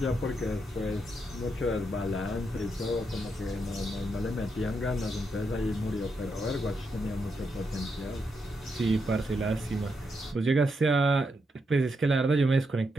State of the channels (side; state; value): both; normal; correlation 0.82